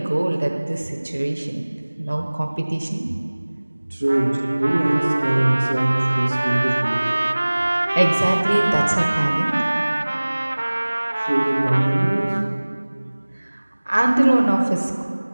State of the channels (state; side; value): inverted; both; correlation -1.00